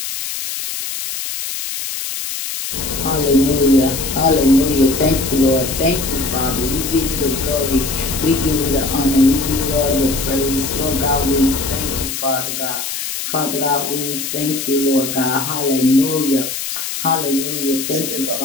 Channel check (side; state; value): left; noise; hiss, 5 dB below the sound